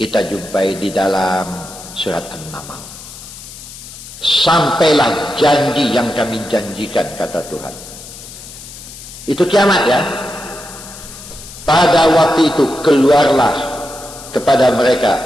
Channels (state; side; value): noise; left; hiss, 15 dB below the sound